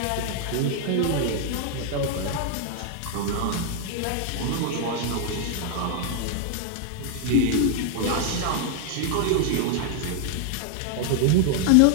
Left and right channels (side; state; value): both; different; correlation 0.00